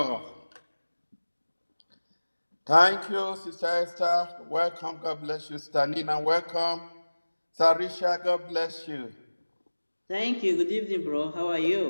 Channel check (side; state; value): both; inverted; correlation -1.00